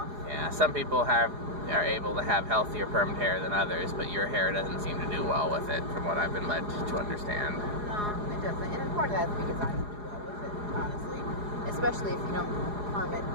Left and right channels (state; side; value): late; left; 4.8 ms